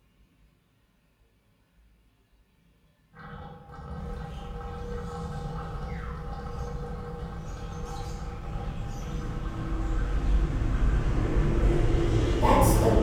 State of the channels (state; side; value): identical; both; correlation 1.00